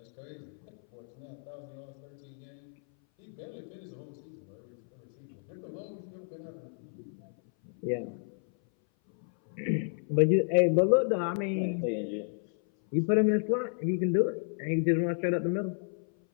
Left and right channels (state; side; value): silent; right; 57 dB below the other